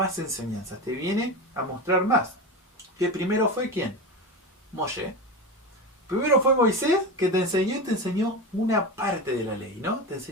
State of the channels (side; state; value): both; normal; correlation 0.23